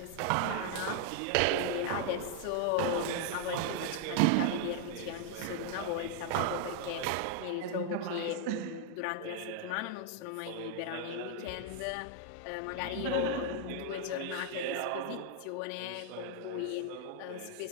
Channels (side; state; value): both; different; correlation 0.00